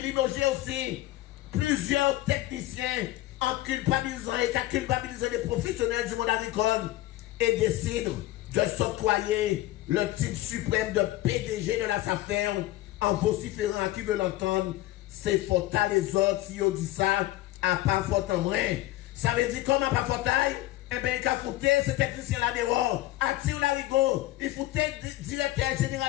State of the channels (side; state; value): right; quieter; 16.5 dB